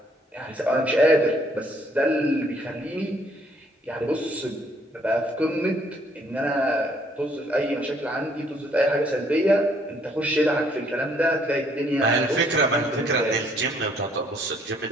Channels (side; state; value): both; normal; correlation 0.65